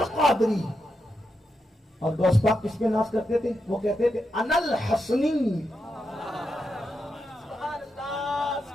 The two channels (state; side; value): normal; both; correlation 0.85